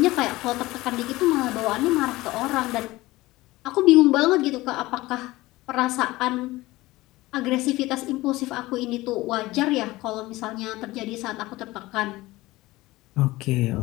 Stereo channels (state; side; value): quieter; right; 19.1 dB